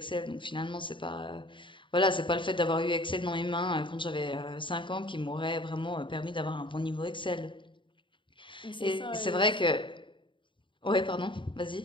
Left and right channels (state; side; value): late; right; 0.24 ms